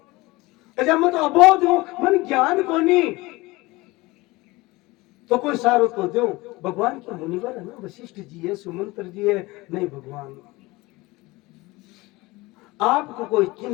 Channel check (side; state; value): right; quieter; 21.6 dB